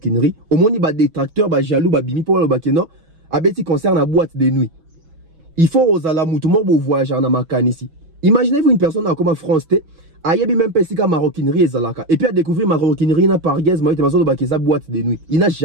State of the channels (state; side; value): late; left; 6.2 ms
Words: au moins ba détracteur ba jaloux ba bimi pour le bakeno a beti concert na boîte de nuit. Il faut osala mutumo bo voyager na makanisi. Imaginez-vous une personne comme France T ayebi même pesika maroquinerie ezalaka et puis à découvrir maroquinerie na par Gez Mao te mazo ba keza boîte de nuit. Il n'a